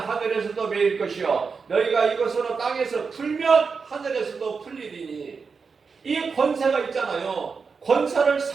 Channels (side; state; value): left; quieter; 5.2 dB